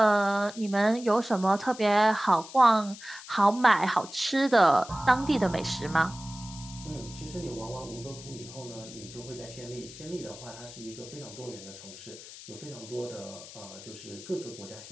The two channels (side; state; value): left; noise; hiss, 15 dB below the sound